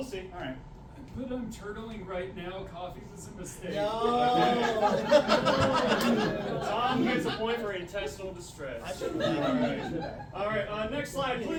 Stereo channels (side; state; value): both; identical; correlation 1.00